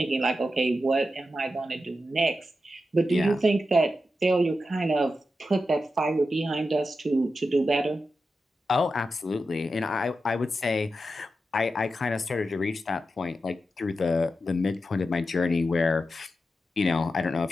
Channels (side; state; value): both; normal; correlation 0.89